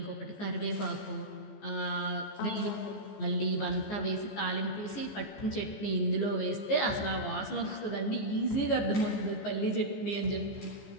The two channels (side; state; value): right; late; 14 ms